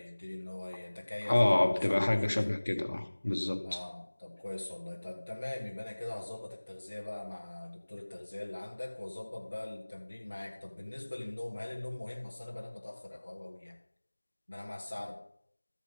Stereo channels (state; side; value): inverted; both; correlation -1.00